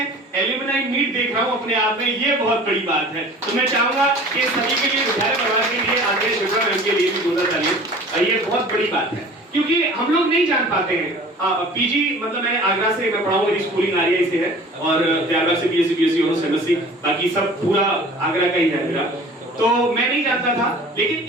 एलुमनाई मीट देख रहा हूं अपने आप में, ये बहुत बड़ी बात है। तो मैं चाहूंगा कि सभी के लिए, विद्यालय परिवार के लिए, आदरणीय शिप्रा मैम के लिए भी जोरदार तालियां, ये बहुत बड़ी बात है क्योंकि हम लोग नहीं जान पाते हैं। पीजी मतलब मैं आगरा से मैं पढ़ा हूँ, मेरी स्कूलिंग आरआई से है और त्यागराज से बीएससी ऑनर्स एमएससी, बाकी सब पूरा आगरा का ही है मेरा। तो मैं नहीं जानता था, लेकिन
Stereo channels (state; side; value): normal; both; correlation 0.45